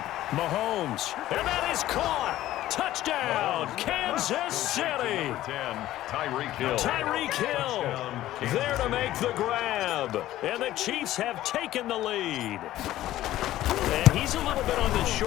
Mahomes. And that is caught. Touchdown, Kansas City. Tyreek Hill there to make the grab. And the Chiefs have taken the lead. And he's a little bit on the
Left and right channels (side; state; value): right; quieter; 14.4 dB